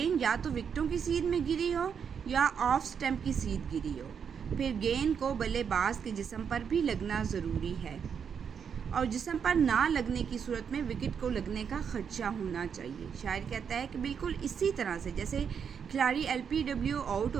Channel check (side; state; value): left; quieter; 7.1 dB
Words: یا تو وکٹوں کی سیدھ میں گری ہو یا آف سٹمپ کی سیدھ گری ہو، پھر گیند کو بلے باز کے جسم پر بھی لگنا ضروری ہے، اور جسم پر نہ لگنے کی صورت میں وکٹ کو لگنے کا خدشہ ہونا چاہیے۔ شاعر کہتا ہے کہ بالکل اسی طرح سے جیسے کھلاڑی LBW آؤٹ